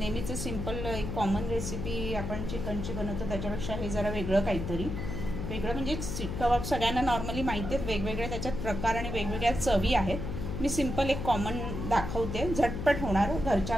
सिंपल एक कॉमन रेसिपी आपण चिकनची बनवतो, त्याच्यापेक्षा हे जरा वेगळं काहीतरी। वेगळं म्हणजे शीख कबाब सगळ्यांना नॉर्मली माहिती आहेत, वेगवेगळे त्याच्यात प्रकार आणि वेगवेगळ्या चवी आहेत। मी सिंपल एक कॉमन दाखवते, झटपट होणार, घरच्या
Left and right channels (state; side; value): noise; left; hum, 4 dB below the sound